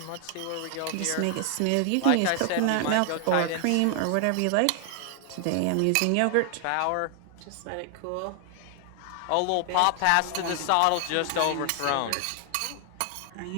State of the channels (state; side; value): different; both; correlation 0.00